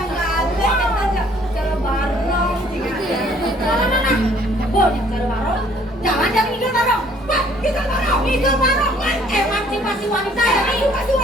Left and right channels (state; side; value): normal; both; correlation 0.60